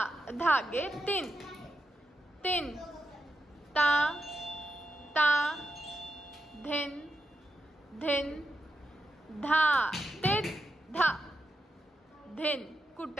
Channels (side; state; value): both; normal; correlation 0.86